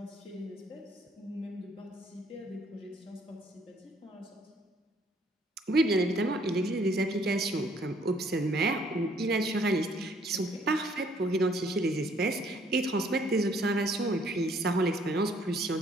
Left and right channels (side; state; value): both; normal; correlation 0.63